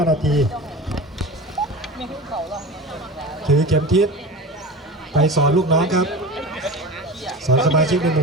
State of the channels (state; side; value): normal; both; correlation 0.32